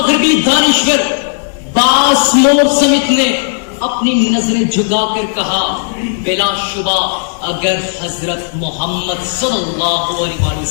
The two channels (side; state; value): right; silent; 67 dB below the other